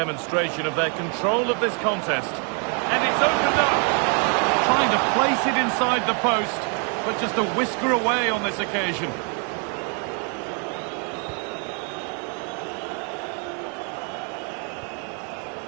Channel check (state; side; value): quieter; left; 38.5 dB